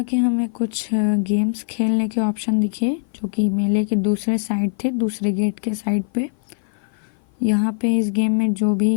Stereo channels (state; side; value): silent; right; 55 dB below the other